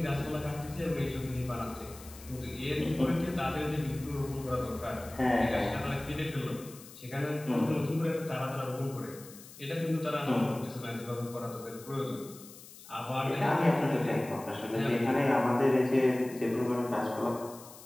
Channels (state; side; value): noise; left; hiss, 18 dB below the sound